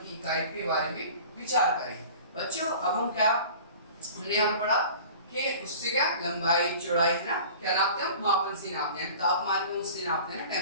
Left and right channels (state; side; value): inverted; both; correlation -0.42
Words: इकाई के बारे में विचार करें। बच्चों अब हम क्या हमने यहाँ पर पढ़ा कि उससे क्या लंबाई चौड़ाई है ना, क्या नापते हैं, मापन से नापते हैं। तापमान को उससे नापते हैं ना,